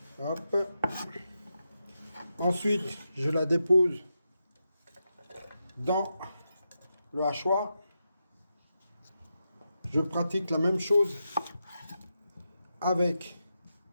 Hop. Ensuite, je la dépose dans le hachoir. Je pratique la même chose avec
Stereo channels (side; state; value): both; inverted; correlation -0.87